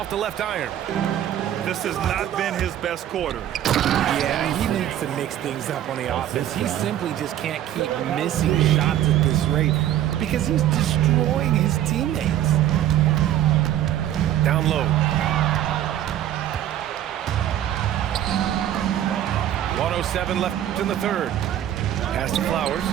the left iron. This has not been his best quarter. Yeah, he needs to mix things up on the offense. He simply just can't keep missing shots at this rate because he's destroying his teammates. Down low. 1:07 left in the third. Pass to Flowers.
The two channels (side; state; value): left; quieter; 11.7 dB